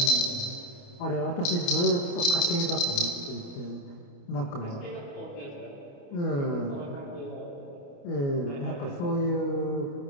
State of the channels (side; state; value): right; late; 29 ms